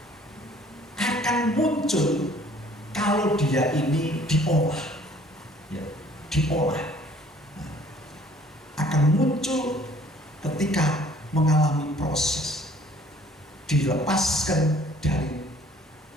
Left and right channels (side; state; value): both; normal; correlation 0.56